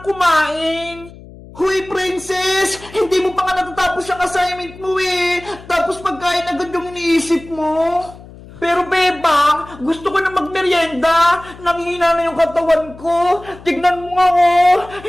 kumain! Huy, princess! Hindi mo pa nga natatapos ang assignment mo eh! Tapos pagkain agad yung iniisip mo! Pero bebang, gusto ko na magmerienda. Nanghina na yung katawan ko. Tignan mo nga oh,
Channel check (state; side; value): noise; left; hum, 19 dB below the sound